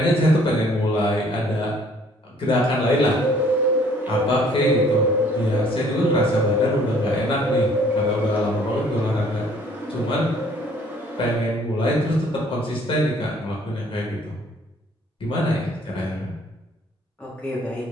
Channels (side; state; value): both; normal; correlation 0.58